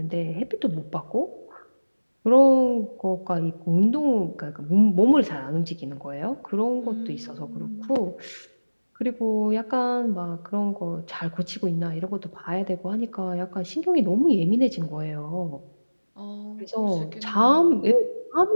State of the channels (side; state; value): both; inverted; correlation -1.00